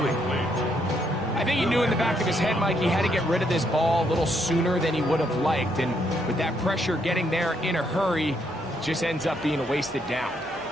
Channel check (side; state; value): both; normal; correlation 0.74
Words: I think he knew in the back of his head, Mike, he had to get rid of this ball a little sooner than he would have liked. And with that pressure getting there in a hurry, just ends up being a wasted down.